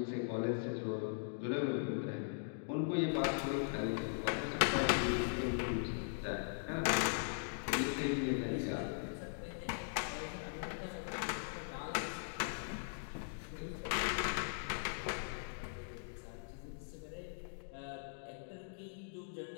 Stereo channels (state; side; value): silent; right; digital silence